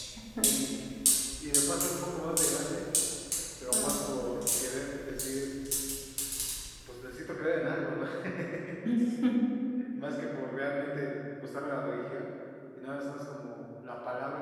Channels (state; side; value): identical; both; correlation 1.00